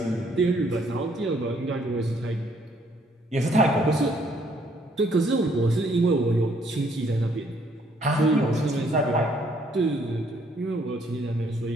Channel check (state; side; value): normal; both; correlation 0.66